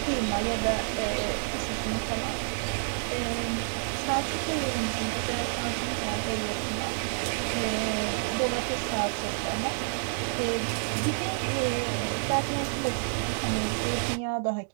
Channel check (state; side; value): silent; left; digital silence